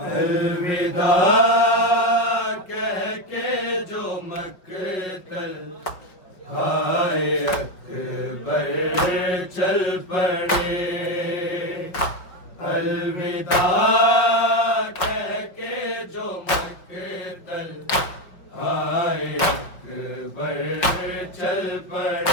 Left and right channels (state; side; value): late; right; 5.3 ms